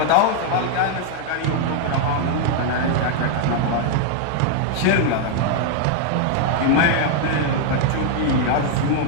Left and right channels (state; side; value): different; both; correlation 0.00